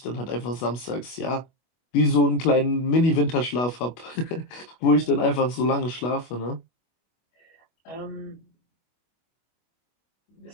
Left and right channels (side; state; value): right; late; 25 ms